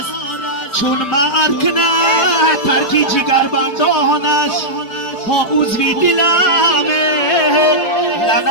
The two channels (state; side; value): late; right; 4.8 ms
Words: چون مرد کنه ترکی جگر بندان است. ها عضوی دلمه